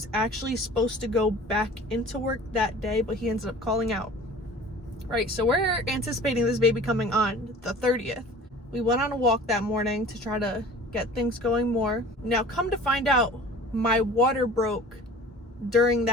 actually supposed to go back into work that day, but he ended up calling out. Right, so we're anticipating this baby coming on the 30th. We went on a walk that morning to try to get things going more. Now, come to find out, my water broke during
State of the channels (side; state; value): both; normal; correlation 0.44